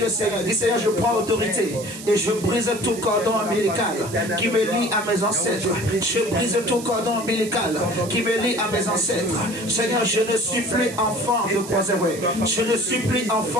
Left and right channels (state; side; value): noise; right; hiss, 13 dB below the sound